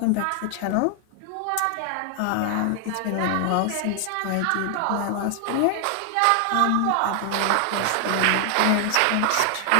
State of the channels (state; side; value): different; both; correlation 0.00